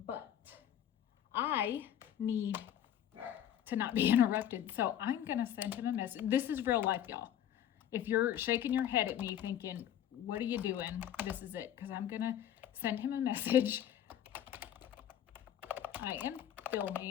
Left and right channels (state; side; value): quieter; right; 10.6 dB